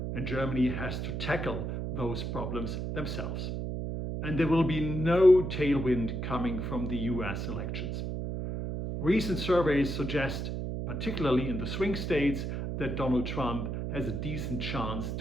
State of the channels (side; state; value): right; noise; hum, 3 dB below the sound